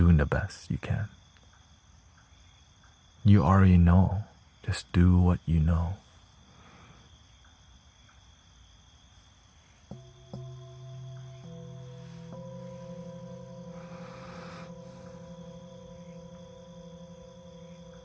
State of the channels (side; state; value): both; identical; correlation 1.00